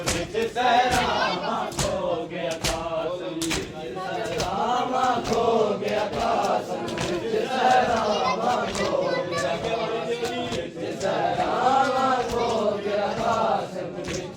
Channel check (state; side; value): identical; both; correlation 1.00